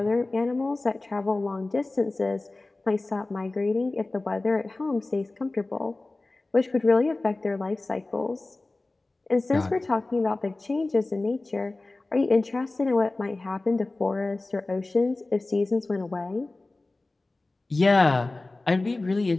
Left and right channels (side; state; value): right; quieter; 3.1 dB